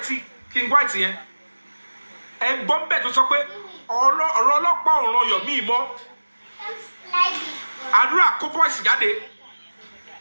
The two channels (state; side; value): inverted; both; correlation -1.00